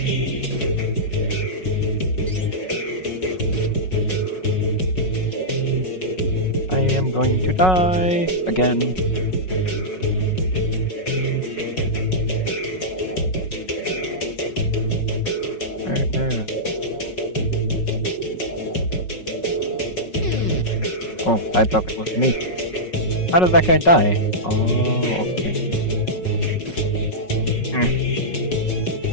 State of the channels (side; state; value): right; late; 5.4 ms